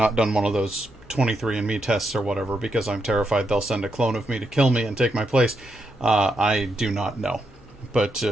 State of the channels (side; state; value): both; normal; correlation 0.82